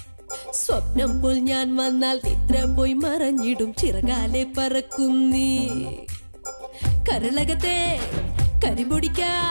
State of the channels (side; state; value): both; inverted; correlation -1.00